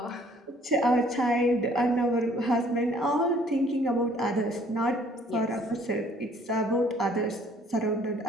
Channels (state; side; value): normal; both; correlation 0.59